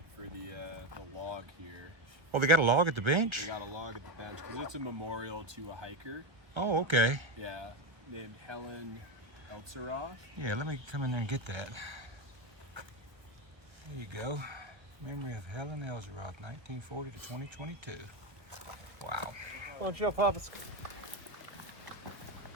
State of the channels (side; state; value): left; late; 1.4 ms